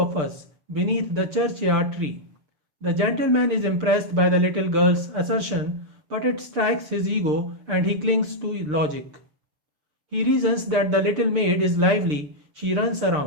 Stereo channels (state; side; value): late; left; 6.7 ms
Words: us beneath the churchyard tree. The gentleman is impressed by the little girl's assertion, but it strikes his ego and he clings to logic. He reasons that the little maid is lively, she runs